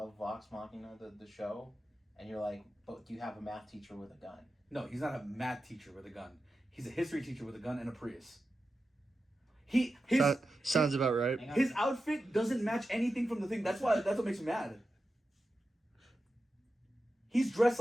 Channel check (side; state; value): both; normal; correlation 0.91